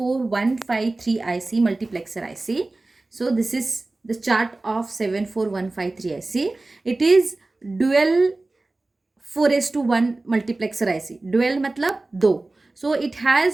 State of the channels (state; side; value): quieter; left; 3.1 dB